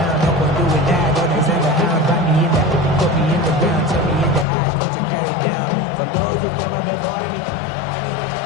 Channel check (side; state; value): right; drops out; at 4.5 s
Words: No one doing that. Don't Alexander Hound, find me in that. Put me in the ground, turn me into ash, put your carry down. For those who came up before me.